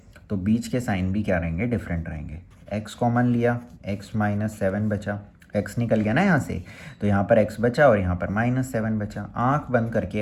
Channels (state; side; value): identical; both; correlation 1.00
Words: तो बीच के साइन भी क्या रहेंगे, डिफरेंट रहेंगे। x कॉमन लिया, x माइनस 7 बचा, x निकल गया ना यहाँ से, तो यहाँ पर x बचा और यहाँ पर -7 बचा। आँख बंद